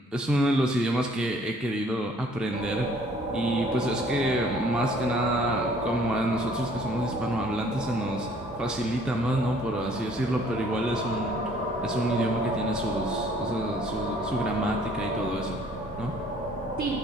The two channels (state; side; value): normal; both; correlation 0.58